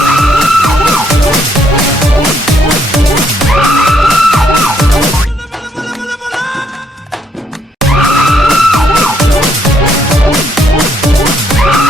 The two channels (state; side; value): normal; both; correlation 0.71